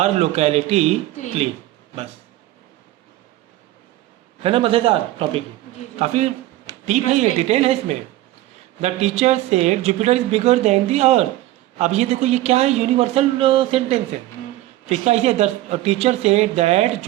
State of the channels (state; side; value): quieter; left; 15.8 dB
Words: locality Clean. Clean, बस। है ना मज़ेदार टॉपिक? जी, जी. काफ़ी डीप है, ये Interesting. डिटेल है इसमें। The teacher said Jupiter is bigger than the earth. अब ये देखो ये क्या है, यूनिवर्सल सेंटेंस है। तो इसका ऐसे the teacher said that